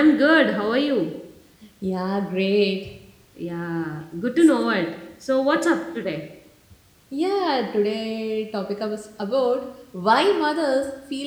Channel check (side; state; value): both; identical; correlation 1.00